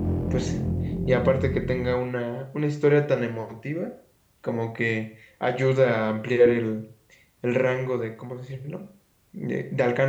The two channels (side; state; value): both; identical; correlation 1.00